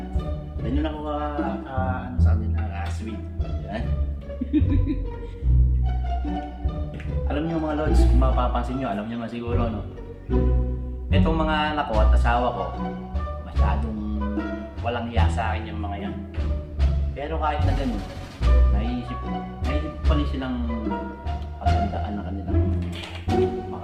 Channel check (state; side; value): identical; both; correlation 1.00